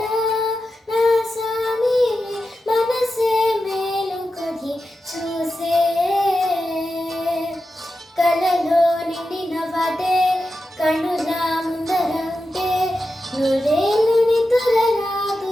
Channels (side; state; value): both; normal; correlation 0.91